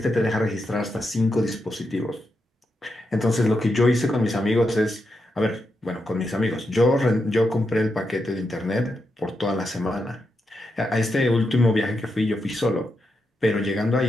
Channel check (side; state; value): both; normal; correlation 0.85